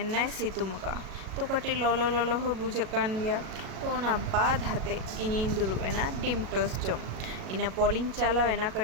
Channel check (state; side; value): late; left; 37 ms